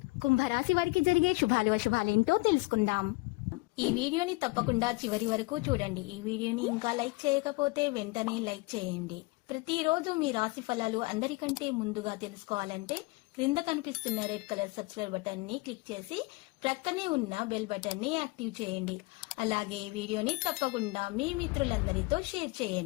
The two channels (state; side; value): quieter; right; 25.0 dB